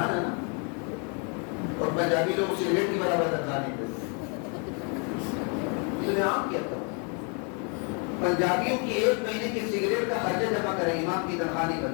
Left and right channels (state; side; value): quieter; right; 37.0 dB